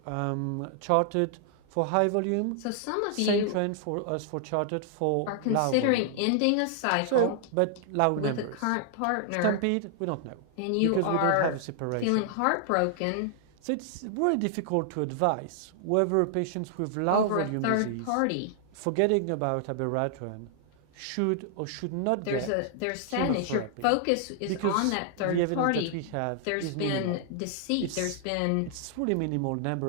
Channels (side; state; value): both; different; correlation -0.01